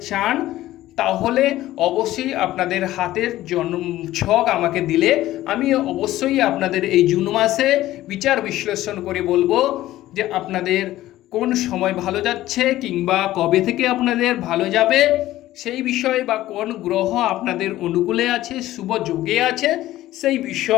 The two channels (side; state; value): right; quieter; 15.1 dB